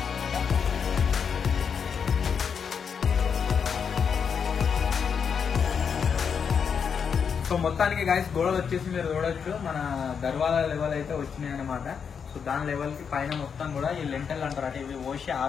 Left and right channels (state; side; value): quieter; right; 6.7 dB